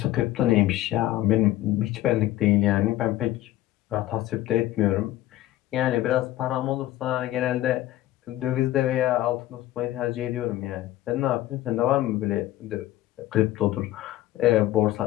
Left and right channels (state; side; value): quieter; right; 15.0 dB